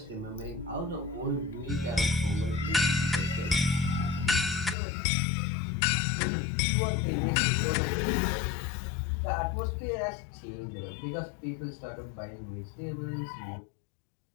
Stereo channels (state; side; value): drops out; right; at 4.8 s